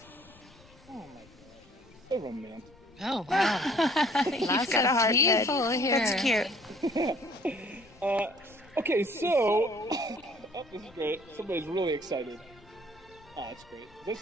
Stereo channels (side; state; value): left; noise; rumble, 26 dB below the sound